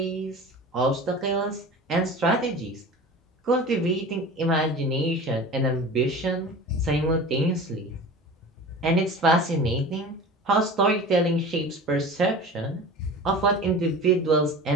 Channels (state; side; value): normal; both; correlation 0.36